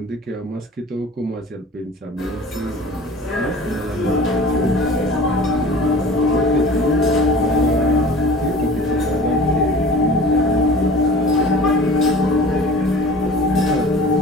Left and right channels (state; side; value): normal; both; correlation 0.42